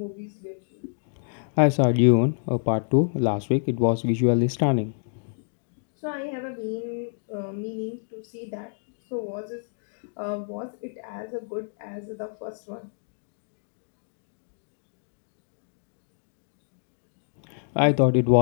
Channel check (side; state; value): right; silent; digital silence